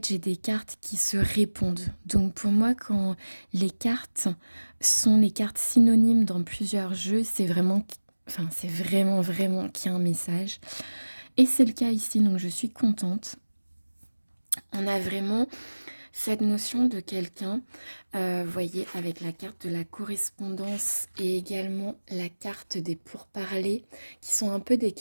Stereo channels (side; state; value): both; inverted; correlation -1.00